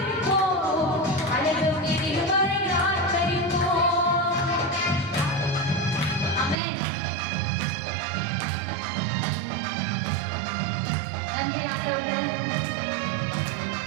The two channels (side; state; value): left; drops out; at 6.6 s